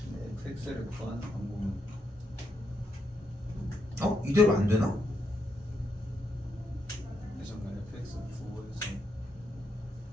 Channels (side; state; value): both; normal; correlation 0.80